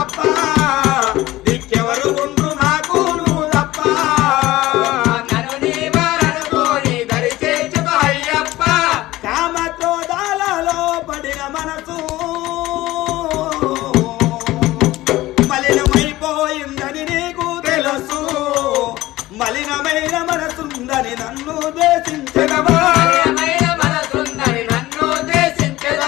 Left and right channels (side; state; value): right; quieter; 17.2 dB